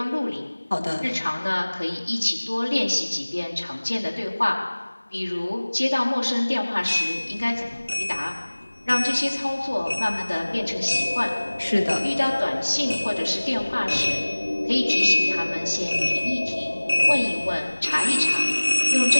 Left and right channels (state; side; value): inverted; both; correlation -1.00